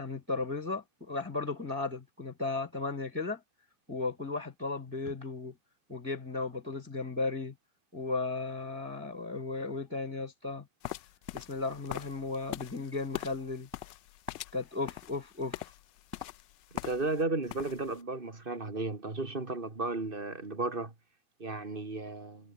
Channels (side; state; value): left; late; 2.2 ms